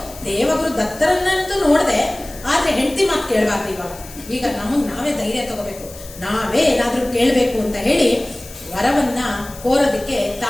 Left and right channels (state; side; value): noise; left; hiss, 17 dB below the sound